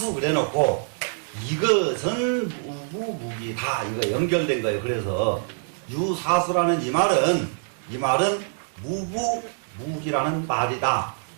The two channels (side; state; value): left; silent; 57 dB below the other